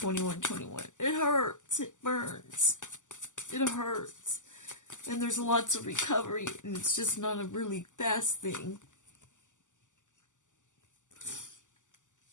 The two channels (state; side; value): late; right; 0.86 ms